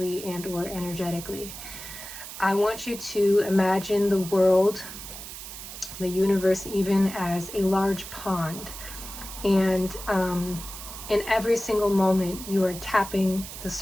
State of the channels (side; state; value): right; noise; hiss, 11 dB below the sound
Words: and or energetically. I want you to imagine the world, the universe, even as a large pond. And in every single moment, you are tapping the